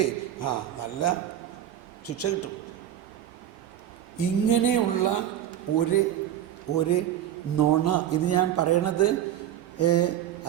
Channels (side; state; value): left; quieter; 11.2 dB